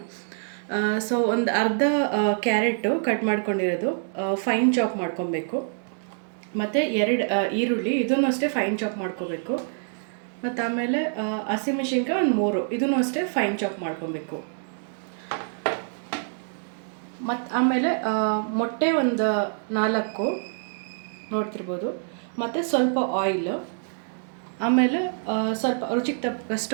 ಸೊ ಒಂದು ಅರ್ಧ ಕ್ಯಾರೆಟು ಕಟ್ ಮಾಡ್ಕೊಂಡಿರೋದು ಫೈನ್ ಚಾಪ್ ಮಾಡ್ಕೊಬೇಕು. ಮತ್ತು 2 ಈರುಳ್ಳಿ ಇದನ್ನು ಅಷ್ಟೇ ಫೈನ್ ಚಾಪ್ ಮಾಡ್ಕೋಬೇಕು. ಮತ್ತು ಆಮೇಲೆ ಹಸಿಮೆಣ್ಸಿನ್ಕಾಯಿ ಒಂದು 3 ಇದನ್ನು ಅಷ್ಟೇ ಫೈನ್ ಚಾಪ್ ಮಾಡ್ಕೊಬೇಕು. ಮತ್ತು ಆಮೇಲೆ ಮೊಟ್ಟೆ ಒಂದು 4 ನೋಡ್ತಿರ್ಬೋದು. ಮತ್ತು ಸ್ವಲ್ಪ ಆಯಿಲು, ಆಮೇಲೆ ಸ್ವಲ್ಪ ರುಚಿಗೆ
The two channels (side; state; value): left; silent; digital silence